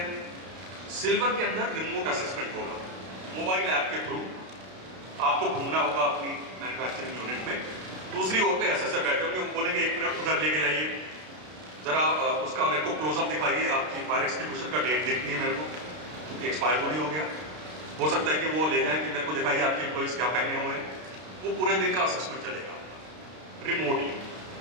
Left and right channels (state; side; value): late; left; 32 ms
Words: सिल्वर के अंदर रिमोट असेसमेंट होगा, मोबाइल ऐप के थ्रू आपको घूमना होगा अपनी मैन्युफैक्चरिंग यूनिट में। दूसरी ओर पे असेसर बैठे होंगे, वो बोलेंगे 1 मिनट उधर लेके जाइए, जरा उसका मेरे को क्लोजअप दिखाइए, आपकी फायर एक्सटिंग्विशर का डेट देखनी है मेरे को, एक्सपायर तो नहीं हो गया। हो सकता है कि वो ले जाए कि मेरे को दिखाइए आपके एम्प्लॉइज क्या पहने हुए हैं। वो पूरे दिन का असेसमेंट चलेगा